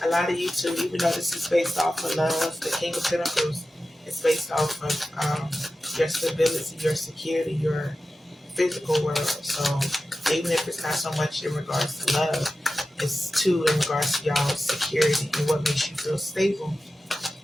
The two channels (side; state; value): both; normal; correlation 0.93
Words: A lot of you too, even though this is based off of love, the King of Pentacles is based off of your stability, your security, your physical world. So even if it's not so much in regards to love, it's too in regards to y'all's security and what makes you feel stable.